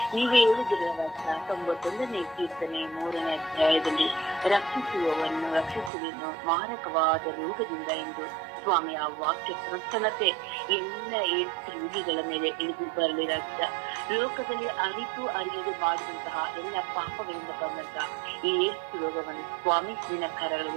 ನೀವೇ ಹೇಳಿದಿರಲ್ಲ 91ನೇ ಕೀರ್ತನೆ 3ನೇ ಅಧ್ಯಾಯದಲ್ಲಿ, ರಕ್ಷಿಸುವೆನು ಮಾರಕವಾದ ರೋಗದಿಂದ ಎಂದು ಸ್ವಾಮಿ ಆ ವಾಕ್ಯ ಪ್ರಸನ್ನತೆ ಎಲ್ಲ ಏಡ್ಸ್ ರೋಗಿಗಳ ಮೇಲೆ ಇಳಿದು ಬರಲಿ ರಾಜ್ಯ. ಲೋಕದಲ್ಲಿ ಅರಿತು ಅರಿಯದೆ ಮಾಡಿದಂತಹ ಎಲ್ಲ ಪಾಪಗಳಿಂದ ಬಂದಂತಹ ಈ ಏಡ್ಸ್ ರೋಗವನ್ನು ಸ್ವಾಮಿ ನಿನ್ನ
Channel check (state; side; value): drops out; left; at 5.9 s